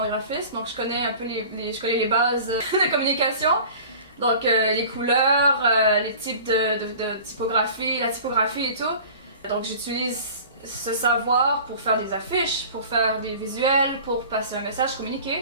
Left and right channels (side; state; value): both; inverted; correlation -0.42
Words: graphisme, donc je connais un peu je connais les bases de communication. Donc les couleurs, les types de typographie, la typographie et tout. Donc j'utilise ce savoir pour faire des affiches, pour faire des visuels, pour passer un message,